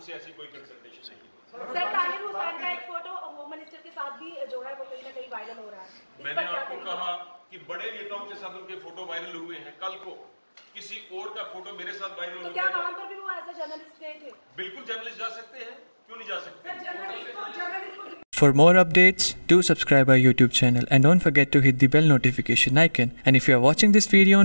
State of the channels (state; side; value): inverted; both; correlation -1.00